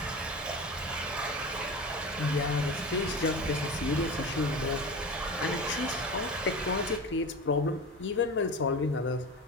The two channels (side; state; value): both; normal; correlation 0.29